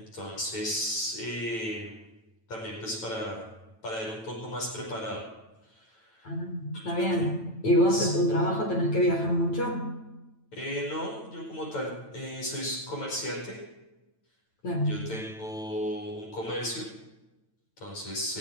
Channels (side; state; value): right; late; 9.0 ms